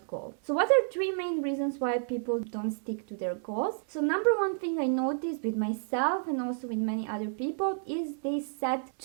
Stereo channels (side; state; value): left; silent; digital silence